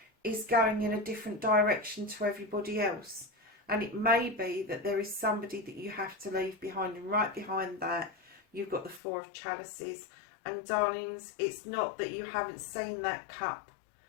is going in a different direction to everybody else. And it may be that there is somebody that you have to leave behind. And right behind that, you've got the 4 of Chalices. And darlings, it's not that you haven't seen that cup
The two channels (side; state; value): right; drops out; at 9.0 s